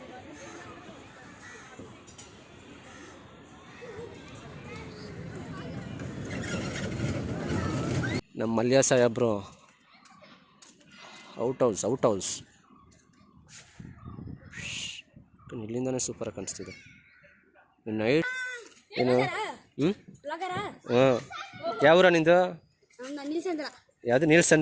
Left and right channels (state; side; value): identical; both; correlation 1.00